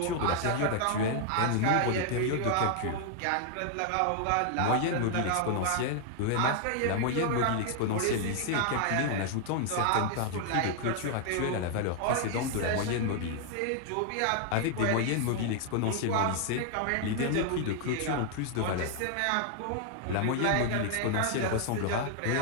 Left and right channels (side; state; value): both; different; correlation 0.00